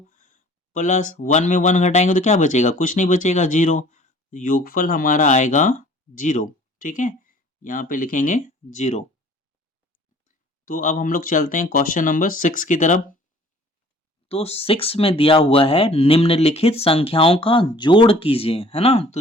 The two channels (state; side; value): normal; both; correlation 0.52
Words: प्लस 1 में 1 घटाएंगे तो क्या बचेगा, कुछ नहीं बचेगा, 0। योगफल हमारा आएगा 0, ठीक है। यहाँ पे लिखेंगे 0। तो अब हम लोग चलते हैं क्वेश्चन नंबर 6 की तरफ। तो 6 में दिया हुआ है, निम्नलिखित संख्याओं का जोड़ कीजिए, है ना।